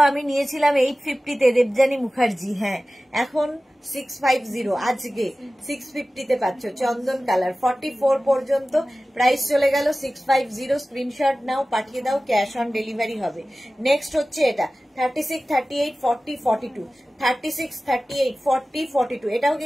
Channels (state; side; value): normal; both; correlation 0.96